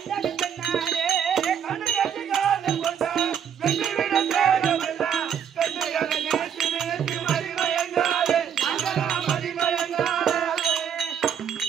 பெண்ணாலே. கண்டு கண்டு காதல் கொண்டார், வெற்றி விடு தேகமெல்லாம் பெண்டுகளை நினைத்து நினைத்து மதி மயங்காதே அங்கலா மதி மயங்காதே.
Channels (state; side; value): quieter; left; 8.4 dB